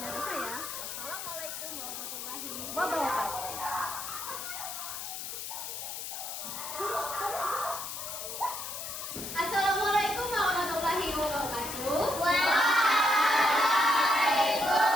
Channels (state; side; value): noise; left; hiss, 7 dB below the sound